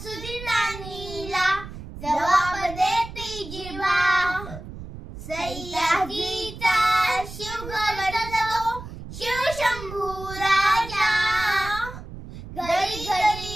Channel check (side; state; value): right; noise; rumble, 12 dB below the sound